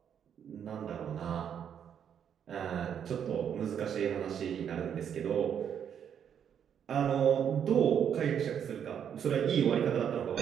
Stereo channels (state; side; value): quieter; left; 8.5 dB